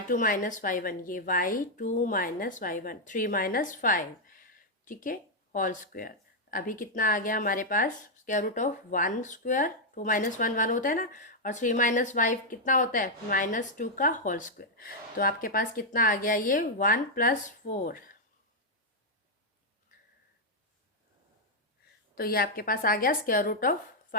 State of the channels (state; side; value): normal; both; correlation -0.02